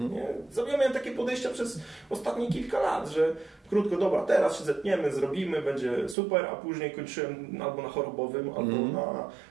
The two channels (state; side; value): drops out; left; at 6.2 s